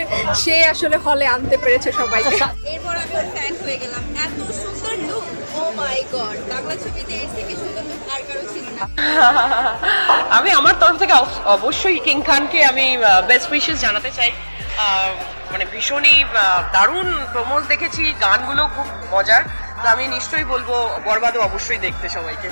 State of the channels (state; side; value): inverted; both; correlation -1.00